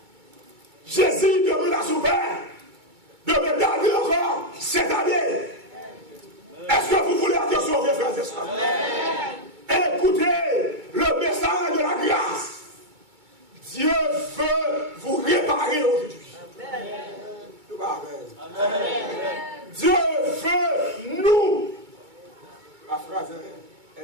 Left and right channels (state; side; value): late; left; 2.2 ms